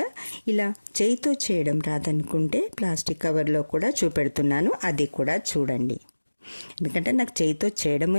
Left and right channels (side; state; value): both; inverted; correlation -1.00